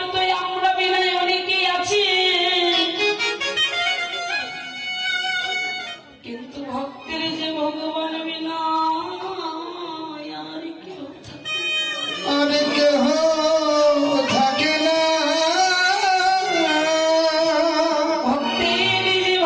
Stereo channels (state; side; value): identical; both; correlation 1.00